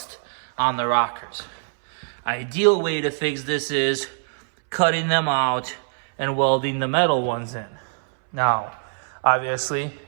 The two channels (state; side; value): silent; left; 62 dB below the other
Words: on the rockers. Ideal way to fix this is cutting them out and welding the metal ones in. Now, obviously,